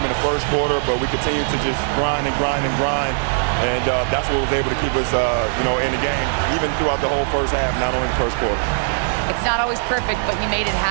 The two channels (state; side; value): silent; left; 66 dB below the other